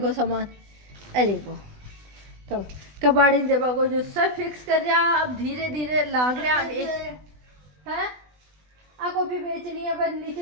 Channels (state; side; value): late; left; 20 ms